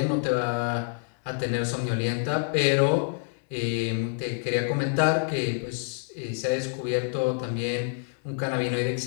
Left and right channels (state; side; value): silent; right; digital silence